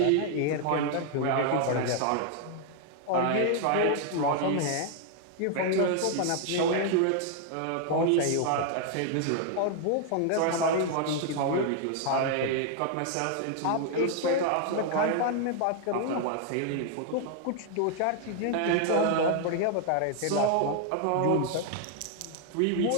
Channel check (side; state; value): both; different; correlation 0.00